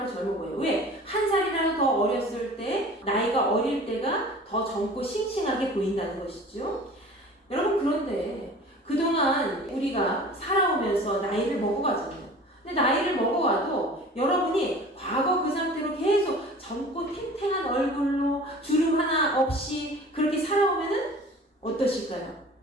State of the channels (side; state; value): both; normal; correlation 0.43